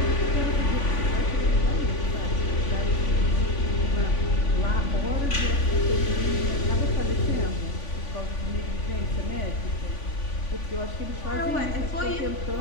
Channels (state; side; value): late; right; 3.5 ms